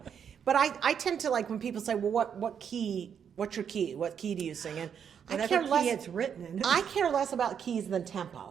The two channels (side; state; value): left; quieter; 7.8 dB